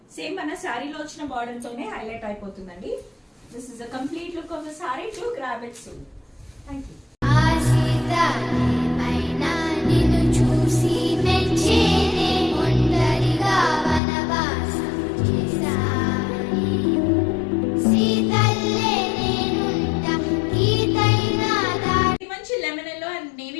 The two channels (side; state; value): right; drops out; at 14.0 s